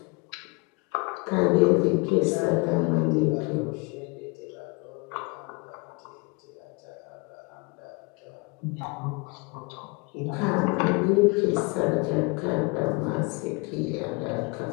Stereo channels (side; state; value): right; quieter; 28.7 dB